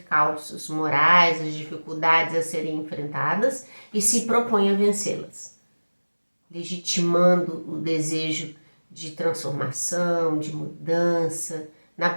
morais, as dificuldades a serem enfrentadas e se propõe a vencê-las, legitimando o desejo de transformação, de mudança, na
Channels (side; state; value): both; inverted; correlation -1.00